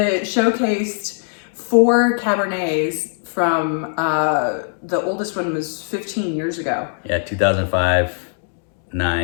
showcased 4 Cabernets from the oldest one was 15 years ago. Yeah, 2005,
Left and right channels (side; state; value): right; silent; 63 dB below the other